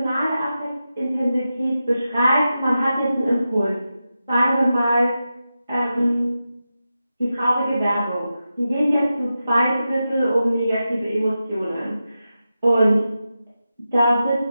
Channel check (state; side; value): inverted; both; correlation -0.91